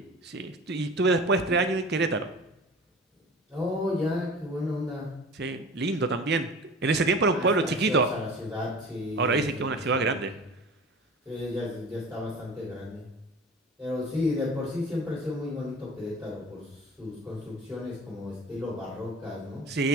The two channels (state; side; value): normal; both; correlation 0.39